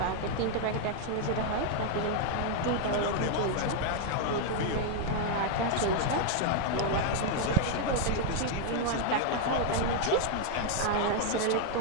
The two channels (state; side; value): different; both; correlation 0.00